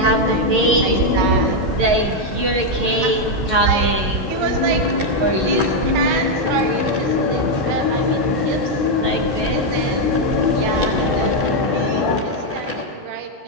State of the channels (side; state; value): left; late; 11 ms